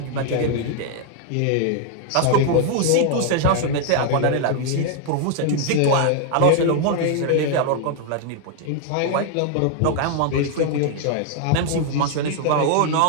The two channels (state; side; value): different; both; correlation 0.00